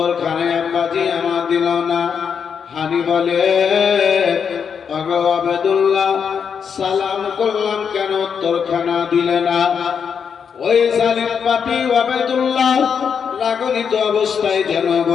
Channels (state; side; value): quieter; right; 6.9 dB